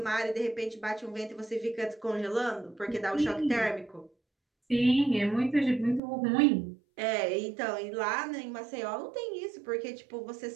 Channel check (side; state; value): left; drops out; at 6.0 s